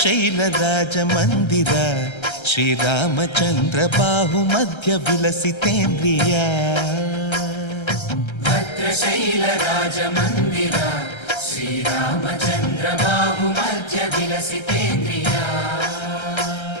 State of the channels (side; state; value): right; late; 1.3 ms